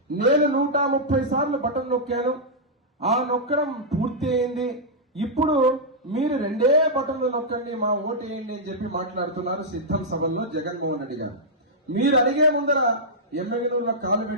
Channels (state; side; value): normal; both; correlation -0.09